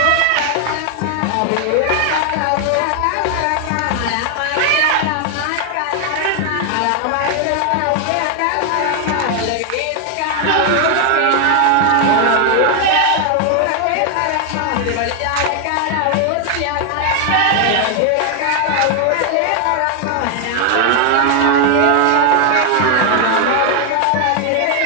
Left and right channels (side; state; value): both; different; correlation 0.00